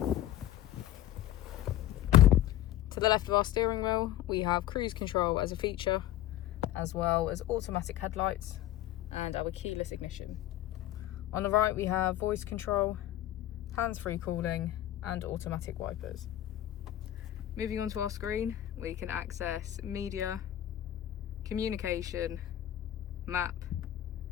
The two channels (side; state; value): right; quieter; 13.1 dB